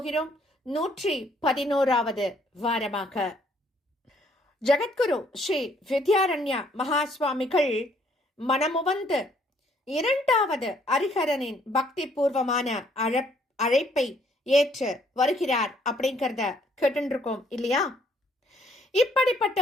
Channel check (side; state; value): both; normal; correlation 0.65